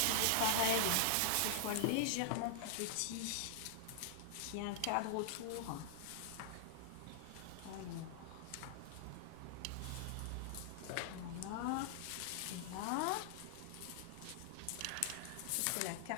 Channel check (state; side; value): different; both; correlation -0.01